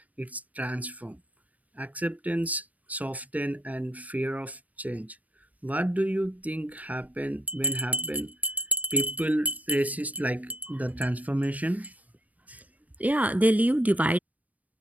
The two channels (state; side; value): late; left; 0.072 ms